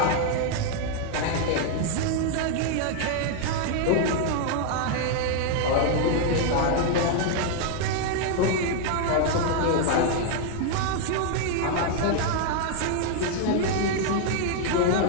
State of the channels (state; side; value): different; both; correlation 0.00